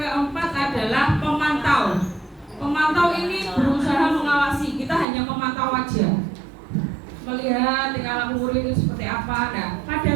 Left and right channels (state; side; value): drops out; left; at 5.1 s